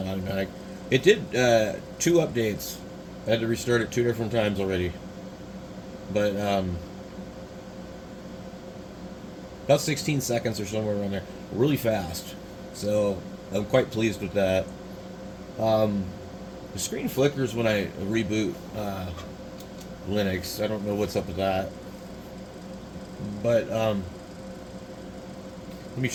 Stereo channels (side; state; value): both; identical; correlation 1.00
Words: automatic. It did two updates. I had to restart it two different times already, but about 16 seconds or somewhere around there, really fast. So I'm quite pleased with that. Um, the screen flickers when I reboot Linux. I don't know what's up with that, but let me